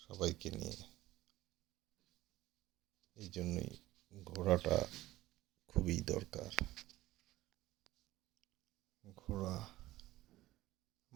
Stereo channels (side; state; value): left; quieter; 16.6 dB